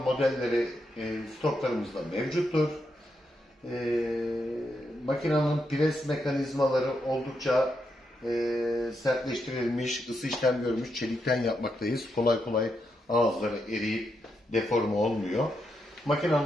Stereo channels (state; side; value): normal; both; correlation 0.82